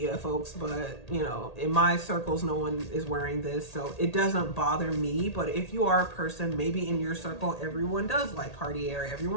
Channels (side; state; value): right; late; 1.8 ms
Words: folks, but you know, in my circles, no one is wearing this, so it doesn't bother me. But if you are a person, maybe in your circle, everyone does like Cartier,